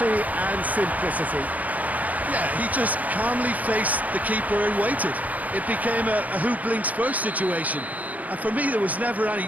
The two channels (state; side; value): late; left; 0.076 ms